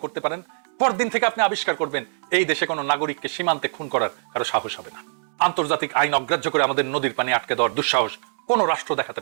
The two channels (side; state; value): left; silent; 63 dB below the other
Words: করতে পারেন, পরদিন থেকে আপনি আবিষ্কার করবেন এই দেশে কোনো নাগরিককে সীমান্তে খুন করার কারো সাহস হবে না। আন্তর্জাতিক আইন অগ্রাহ্য করে আমাদের নদীর পানি আটকে দেওয়ার দুঃসাহস কোনো রাষ্ট্র দেখাতে